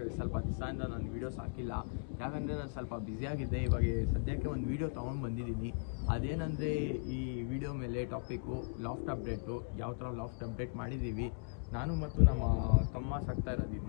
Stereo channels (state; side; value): quieter; right; 38.6 dB